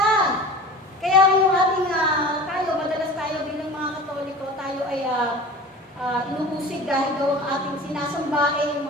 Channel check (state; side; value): normal; both; correlation 0.37